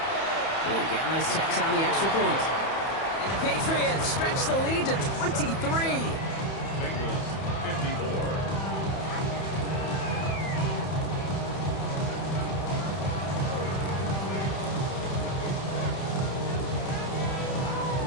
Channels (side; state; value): right; late; 31 ms